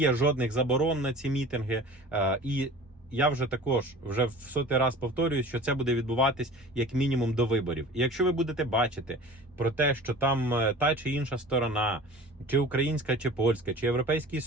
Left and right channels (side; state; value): both; normal; correlation 0.41